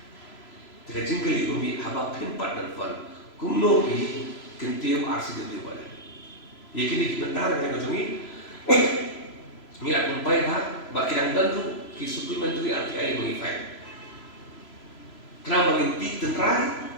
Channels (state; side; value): late; right; 3.0 ms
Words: Jika jingkali kami haba pimpat dan fun, kumno pi kentium arsi dulu balik. Yakini kita mentah dengan kacungi. Ni aku bayar ha, baki yang dan tu ki supplementary RTI mengifai. Kenapa mengintip tenrai,